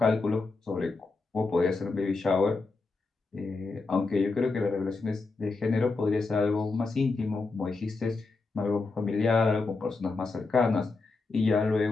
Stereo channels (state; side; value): quieter; right; 3.8 dB